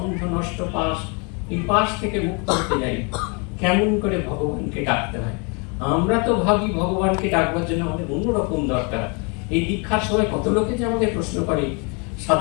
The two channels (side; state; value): right; quieter; 32.9 dB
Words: নষ্ট পাশ, এই পাশ থেকে মুক্ত হতে যাই। কেমন করে ভগবানকে ডাকতে হয়? আমরা তো ভাবি ভগবানকে ডাকবার জন্য আমাদের অন্যরকম দরকার। এই দীক্ষার সময় কত লোকে যে আমাদের প্রশ্ন করে,